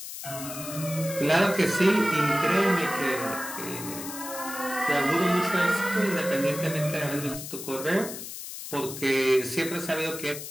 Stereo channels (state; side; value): noise; left; hiss, 9 dB below the sound